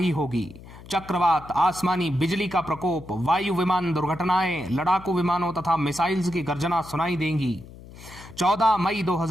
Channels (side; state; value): left; noise; hum, 18 dB below the sound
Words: होगी। चक्रवात, आसमानी बिजली का प्रकोप, वायु विमान दुर्घटनाएं, लड़ाकू विमानों तथा मिसाइल्स की गर्जना सुनाई देंगी। 14 मई